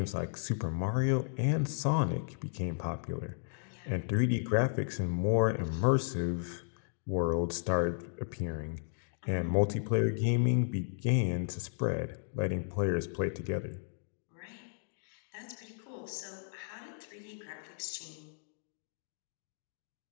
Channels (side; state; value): right; silent; digital silence